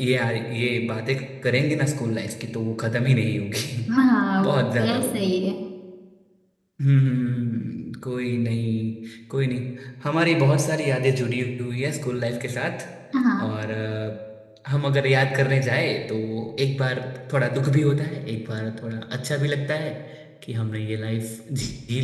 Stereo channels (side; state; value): both; identical; correlation 1.00